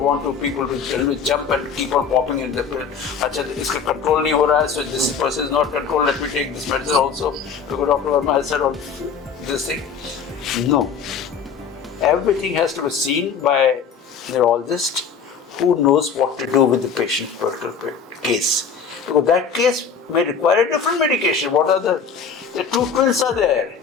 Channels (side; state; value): right; quieter; 6.2 dB